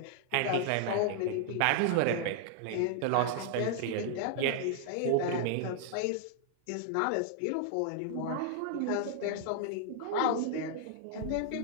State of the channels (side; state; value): both; different; correlation 0.00